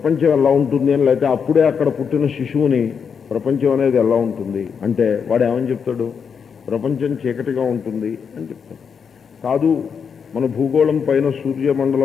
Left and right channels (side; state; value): right; quieter; 6.6 dB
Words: ఎలా ఉంటుంది అని, లేకపోతే అప్పుడే అక్కడ పుట్టిన శిశువుని ప్రపంచం అనేది ఎలా ఉంటుంది అంటే వాడు ఏమని చెప్తాడు? ప్రపంచం చీకటిగా ఉంటుంది అని చెప్తాడు. కాదు, మన భూగోళం పైన